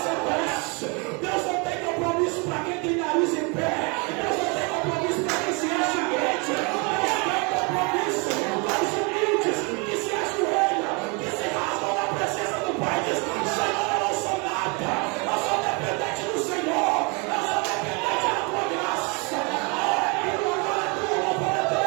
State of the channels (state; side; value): quieter; left; 31.4 dB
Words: desce, Deus não tem compromisso para quem tem nariz em pé. Deus não tem compromisso para quem se acha crente. Deus tem compromisso para os humildes que se ajoelham, que se rasgam na presença do Pai. Diz: Senhor, eu não sou nada, eu sou dependente do Senhor, eu sou dependente da tua graça.